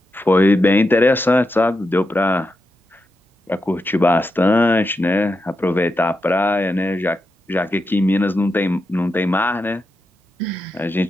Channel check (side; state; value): both; normal; correlation 0.87